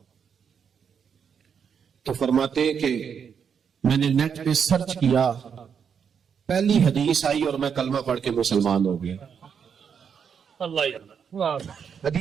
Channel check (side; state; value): left; quieter; 7.1 dB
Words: تو فرماتے ہیں کہ میں نے نیٹ پہ سرچ کیا، پہلی حدیث آئی اور میں کلمہ پڑھ کے مسلمان ہو گیا.